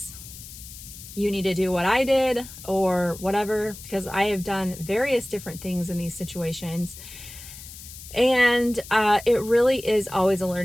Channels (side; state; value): left; noise; hiss, 15 dB below the sound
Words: you need to do what I did or whatever, because I have done various different things in these situations. And it really is always a